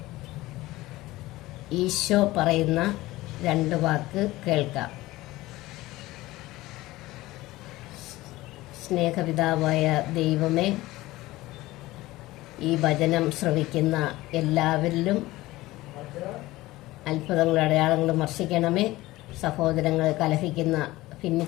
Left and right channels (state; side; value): quieter; right; 18.3 dB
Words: ഈശോ പറയുന്ന 2 വാക്ക് കേൾക്കാം. സ്നേഹപിതാവായ ദൈവമേ, ഈ വചനം ശ്രവിക്കുന്ന എല്ലാവരിലും അത്ഭുതങ്ങളും അടയാളങ്ങളും വർഷിക്കണമേ. സഹോദരങ്ങളെ കലഹിക്കുന്ന,